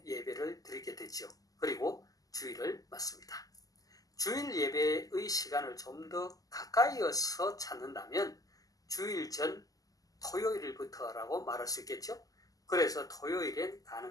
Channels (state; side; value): late; right; 0.17 ms